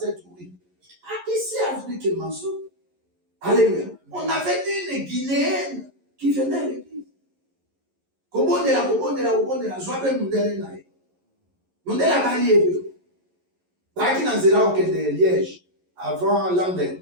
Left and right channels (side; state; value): left; late; 11 ms